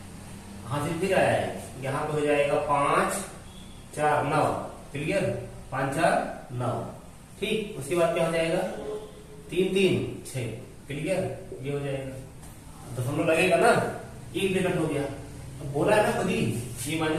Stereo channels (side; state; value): both; identical; correlation 1.00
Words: हासिल फिर आया है, यहाँ पे हो जाएगा 5 4 9, क्लियर, 5 4 9, ठीक। उसके बाद क्या हो जाएगा, 3 3 6, क्लियर, ये हो जाएगा। दशमलव लगेगा ना, एक ब्रैकेट हो गया। अब बोला है ना खुद ही, ये